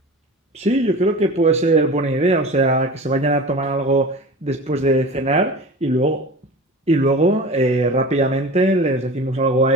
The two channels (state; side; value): normal; both; correlation 0.35